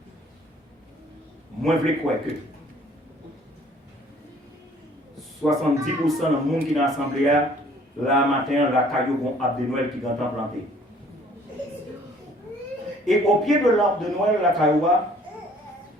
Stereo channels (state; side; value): normal; both; correlation 0.57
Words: Moi, je veux croire que 70% des monde qui dans l'assemblée, là matin, la caillou vont arbre de Noël qui est planté. Et au pied de l'arbre de Noël, la caillou,